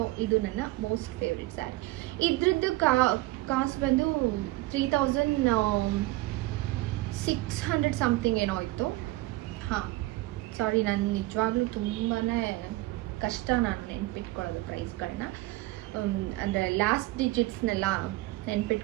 ಇದು ನನ್ನ ಮೋಸ್ಟ್ ಫೇವ್ರೆಟ್ ಸ್ಯಾರಿ. ಇದ್ರದ್ದು ಕಾಸ್ಟ್ ಬಂದು 3600 ಸಮಥಿಂಗ್ ಏನೋ ಇತ್ತು. ಹಾಂ, ಸಾರಿ, ನಾನು ನಿಜವಾಗ್ಲೂ ತುಂಬಾ ಕಷ್ಟ ನಾನು ನೆನ್ಪಿಟ್ಕೊಳ್ಳೋದು ಪ್ರೈಸ್ಗಳನ್ನ. ಅಂದರೆ ಲಾಸ್ಟ್ ಡಿಜಿಟ್ಸ್ನೆಲ್ಲ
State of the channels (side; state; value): left; quieter; 19.1 dB